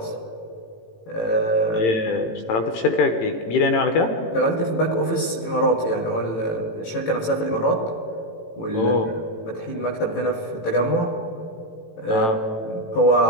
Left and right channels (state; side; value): late; right; 18 ms